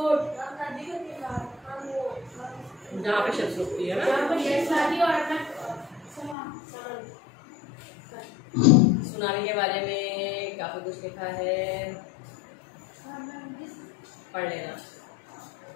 जहाँ पे शिप्स रुकती है ना. सुनामी के बारे में काफी कुछ लिखा है, पढ़ लेना.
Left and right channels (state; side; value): drops out; right; at 6.4 s